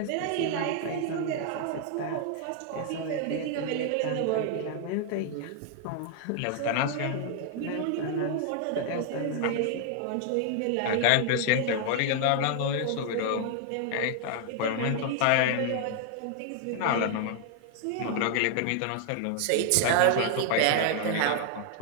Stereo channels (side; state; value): both; different; correlation 0.00